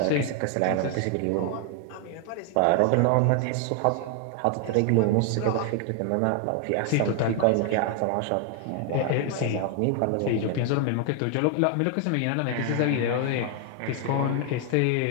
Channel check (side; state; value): both; different; correlation 0.00